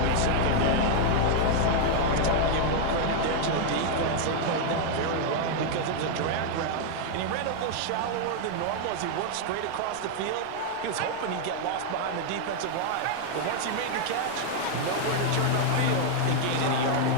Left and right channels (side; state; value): both; different; correlation 0.00